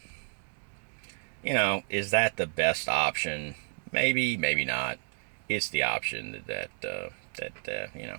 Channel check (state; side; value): silent; left; 55 dB below the other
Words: Is that the best option? Maybe, maybe not. It's the option that